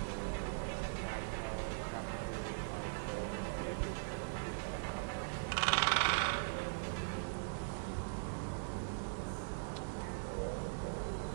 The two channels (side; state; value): left; silent; digital silence